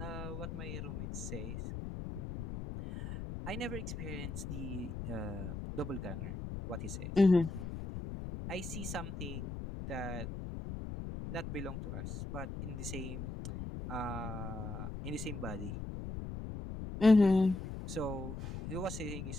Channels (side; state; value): left; noise; rumble, 6 dB below the sound